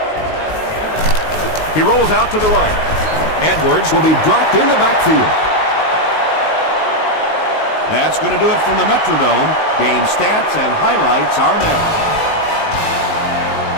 He rolls out to the right. Edwards will be dropped in the backfield. That's going to do it from the Metrodome. Game stats and highlights are next.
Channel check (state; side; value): late; right; 19 ms